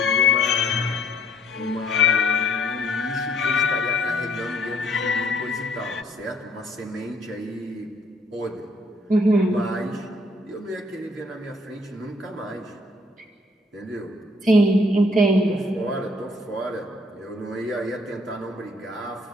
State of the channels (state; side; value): normal; both; correlation 0.62